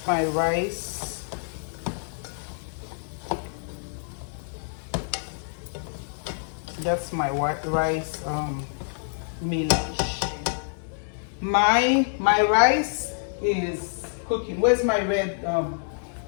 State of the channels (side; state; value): right; silent; digital silence